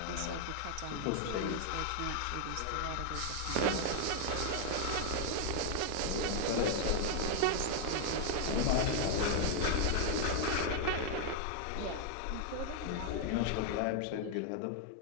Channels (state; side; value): different; both; correlation 0.00